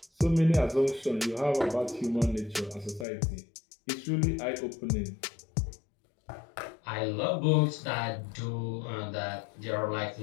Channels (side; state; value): right; drops out; at 3.1 s